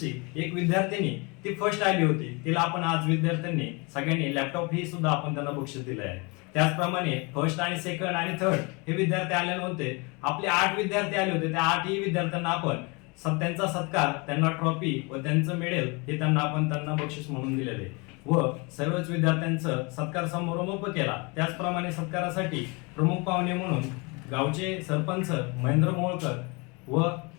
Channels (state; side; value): quieter; right; 29.2 dB